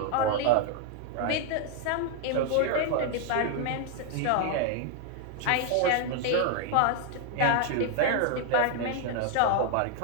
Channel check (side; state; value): both; different; correlation 0.00